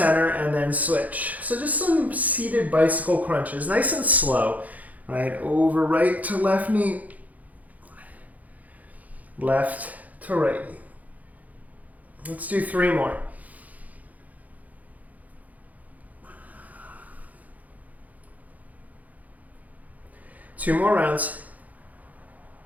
and then switch. So just some seated bicycle crunches, nice and slow. Right, over right to left knee, left to right knee. Let's do 3 more. Two more rounds.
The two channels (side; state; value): left; late; 0.077 ms